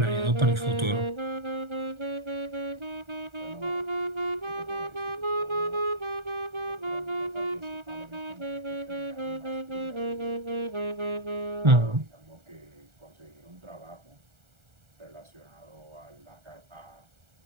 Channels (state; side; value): late; left; 1.4 ms